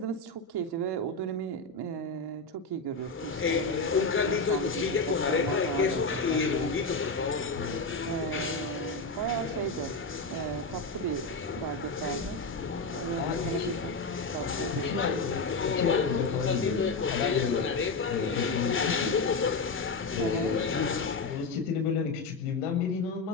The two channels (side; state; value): right; quieter; 3.5 dB